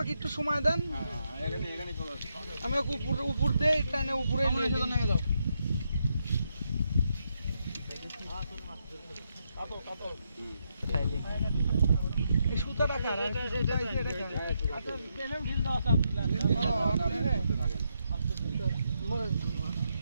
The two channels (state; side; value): inverted; both; correlation -0.81